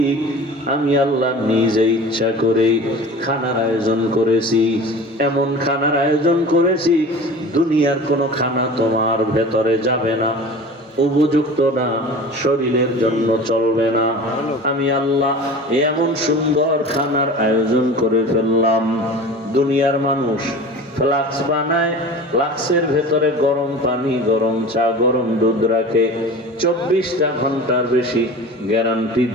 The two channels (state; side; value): normal; both; correlation 0.37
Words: আমি আল্লাহ নিজে ইচ্ছা করে খানার আয়োজন করেছি। এমন খানার আয়োজন করেছি, দুনিয়ার কোনো খানা তোমার ভেতরে যাবে না, উপযুক্ত না, শরীরের জন্য চলবে না। আমি আল্লাহ এমন সুন্দর খানার আয়োজন করে ফেললাম। দুনিয়ার মানুষ ফ্লাক্স বানায়, ফ্লাক্সের ভেতরে গরম পানি, গরম চা, গরম দুধ রাখে, 24টা ঘন্টার বেশি গ্যারান্টি